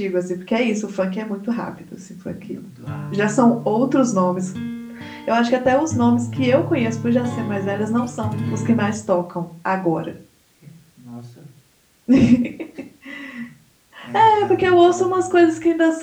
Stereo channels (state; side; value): identical; both; correlation 1.00